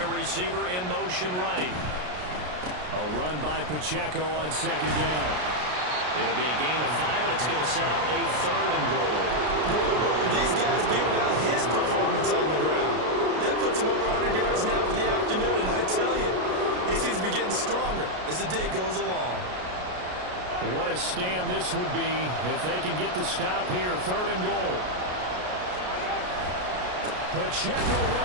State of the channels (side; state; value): left; late; 33 ms